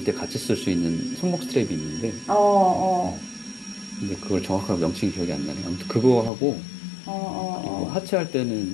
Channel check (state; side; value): drops out; right; at 6.3 s